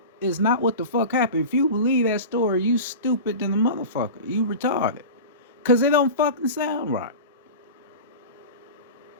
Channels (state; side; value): inverted; both; correlation -0.31